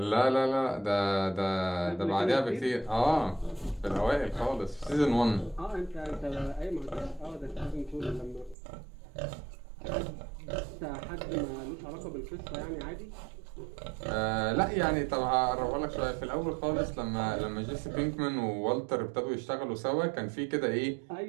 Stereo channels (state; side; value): drops out; left; at 8.6 s